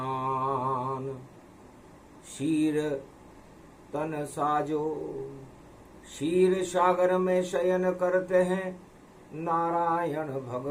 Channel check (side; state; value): both; identical; correlation 1.00